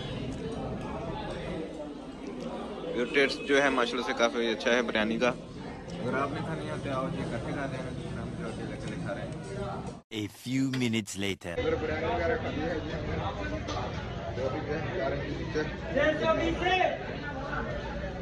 ये टेस्ट जो है माशाल्लाह से काफ़ी अच्छा है बिरयानी का। अगर आपने खानी है तो आओ जी इकट्ठे खा लेना। हम जो अकेले खा रहे हैं। A few minutes later. Biryani वगैरह खानी है जी हमने।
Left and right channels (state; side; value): identical; both; correlation 1.00